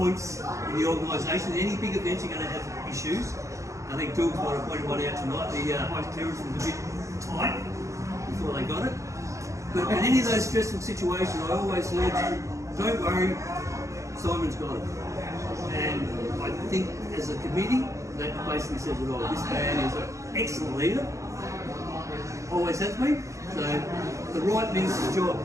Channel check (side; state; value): left; late; 0.15 ms